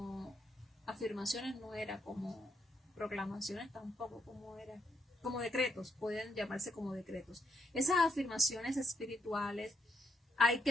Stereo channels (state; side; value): normal; both; correlation 0.76